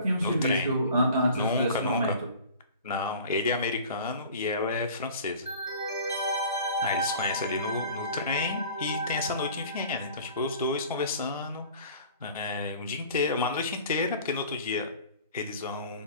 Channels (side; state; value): both; inverted; correlation -0.44